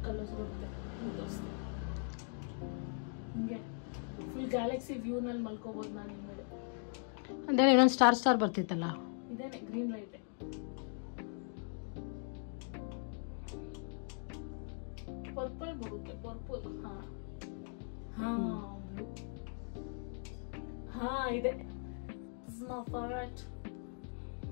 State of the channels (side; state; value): right; silent; 51 dB below the other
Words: ಕಲರ್ಸ್ ಬರುತ್ತೆ. ಹಿಂಗೆ ಫುಲ್ ಗ್ಯಾಲಕ್ಸಿ ವ್ಯೂನಲ್ಲಿ ಮಲ್ಕೋಬಹುದು ನಾನು ಹಿಂದೆ. ಅಂದ್ರೆ ಇನ್ನೊಂದು ಸ್ಟಾರ್ ಬರ್ತಿತ್ತಲ್ಲ, ಇದೇನೆ ಗ್ರೀನ್ ಲೈಟ್. ಪರ್ಪಲ್ ಬರುತ್ತೆ, ಪರ್ಪಲ್. ಹಾ ಇದೆ.